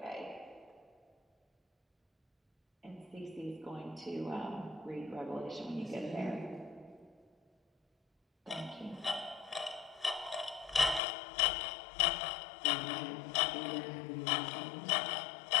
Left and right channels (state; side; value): drops out; right; at 11.0 s